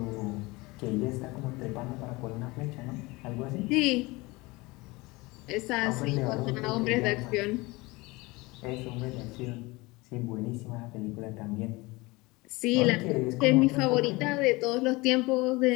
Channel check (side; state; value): right; quieter; 23.1 dB